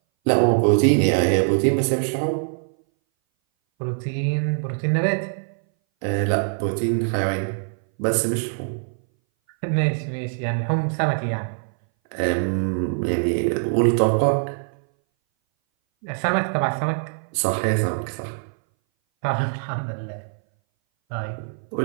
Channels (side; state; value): left; silent; 60 dB below the other